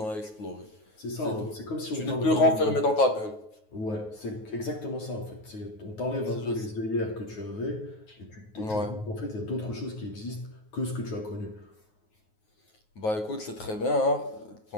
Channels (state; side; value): late; right; 9.4 ms